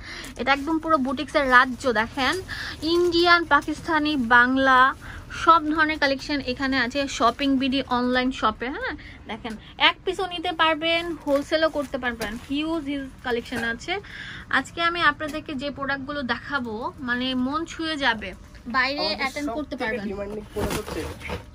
এটা একদম পুরো বুটিক্সের রাজ্য। দেখেন, ইন্ডিয়ান, পাকিস্তানি, বাংলা সব ধরনের কালেকশন এখানে আছে। শপিং বিডি অনলাইন শপে। হ্যাঁ, দেখেন, এক পিসও নিতে পারবেন, হোলসেলও করতে পারবেন। হিউজ কালেকশন আছে। আজকে আমি আপনাদেরকে যে প্রোডাক্টগুলো দেখাবো, মানে মন ছুঁয়ে যাবে, বাইরে অ্যাটেন্ড করতে পারবেন।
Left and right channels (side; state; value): both; identical; correlation 1.00